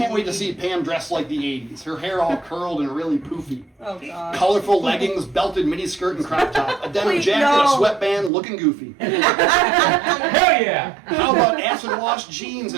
wait to see Pam dressed like the 80s. Her hair all curled and really poofy. Oh, God. Colorful leggings, belted miniskirt and crop top. A denim jacket, a sweatband, looking goofy. Hell yeah! How about acid wash jeans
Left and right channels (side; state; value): left; drops out; at 8.3 s